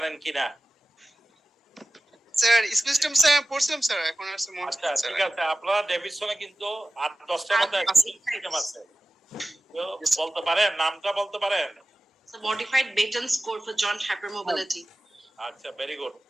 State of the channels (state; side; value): normal; both; correlation 0.96